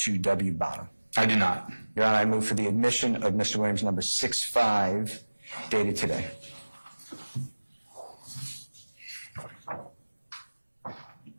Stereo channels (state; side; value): inverted; both; correlation -1.00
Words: bottom? I do not. Your Honor, I move for the admission of Mr. Williams number 65 dated today.